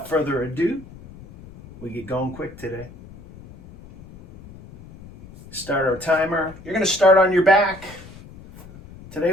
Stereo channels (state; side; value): noise; left; rumble, 19 dB below the sound